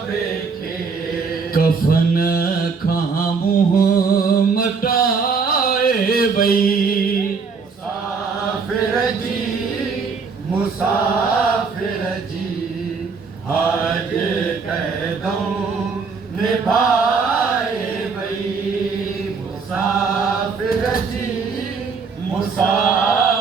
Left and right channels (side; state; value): left; quieter; 5.1 dB